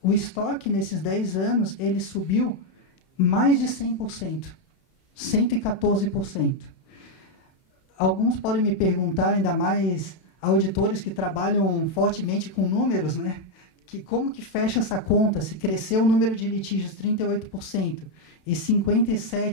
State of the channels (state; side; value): late; right; 32 ms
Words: O estoque, nesses 10 anos, ele subiu mais de 100%, 114%. Alguns podem me perguntar, ainda mais auditores que trabalham fortemente com números, né? Que como que fecha essa conta, se cresceu o número de litígios 38% e